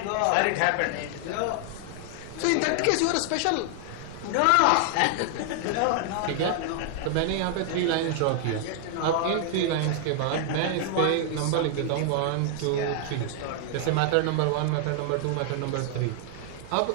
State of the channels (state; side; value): different; both; correlation 0.00